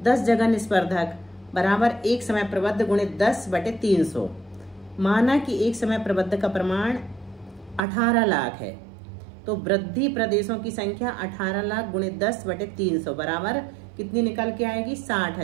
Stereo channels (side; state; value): left; drops out; at 7.8 s